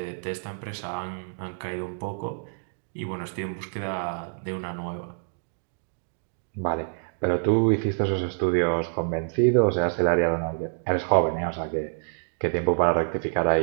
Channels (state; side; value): silent; left; digital silence